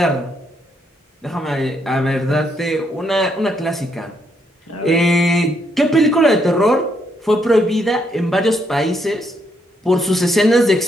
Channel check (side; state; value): both; normal; correlation 0.75